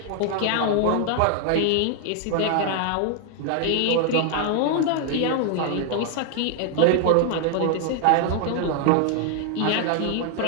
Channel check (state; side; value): different; both; correlation 0.00